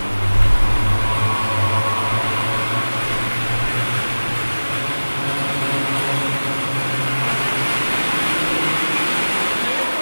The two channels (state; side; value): inverted; both; correlation -1.00